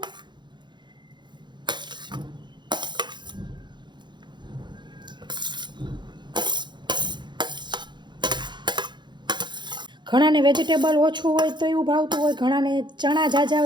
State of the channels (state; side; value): late; left; 0.22 ms